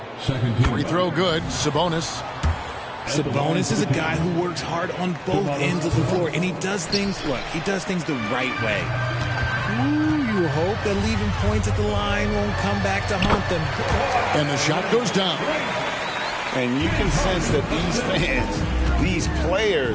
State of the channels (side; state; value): both; identical; correlation 1.00